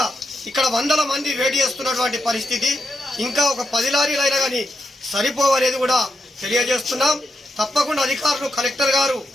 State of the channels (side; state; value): both; normal; correlation 0.84